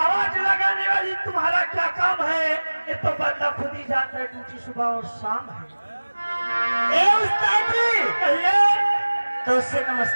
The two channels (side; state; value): both; inverted; correlation -1.00